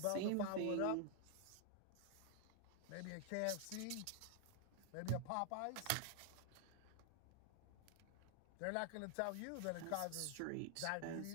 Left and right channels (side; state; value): both; different; correlation 0.00